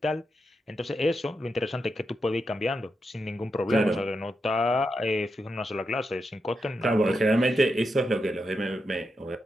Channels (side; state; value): both; normal; correlation 0.86